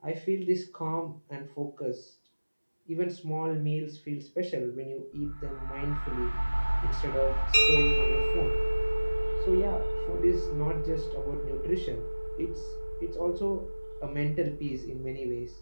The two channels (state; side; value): inverted; both; correlation -1.00